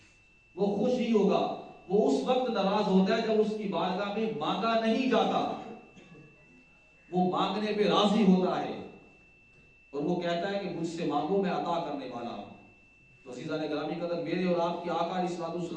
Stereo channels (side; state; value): both; identical; correlation 1.00